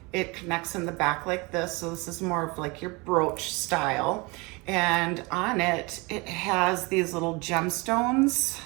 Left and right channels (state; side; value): quieter; left; 26.5 dB